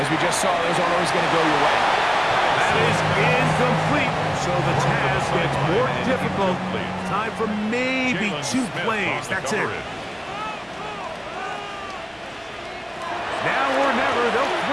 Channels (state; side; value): identical; both; correlation 1.00